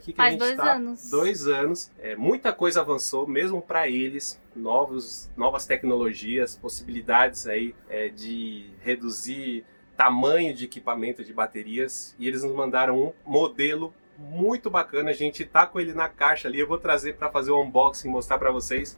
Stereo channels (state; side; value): inverted; both; correlation -1.00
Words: que Faz a gente está, 2 anos. 2 anos, muita coisa avançou, mesmo para eles, novas tecnologias, possibilidades aí de reduzir tamanho de equipamento de baterias, e eles nos mandaram um modelo muito bacana. A gente tá com ele na caixa ali, eu vou trazer para fazer o unboxing, mostrar para